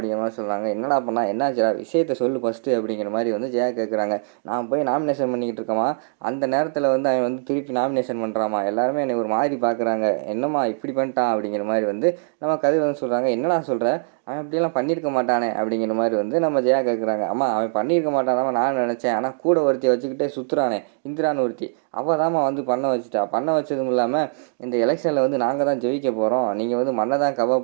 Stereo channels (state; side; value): silent; left; digital silence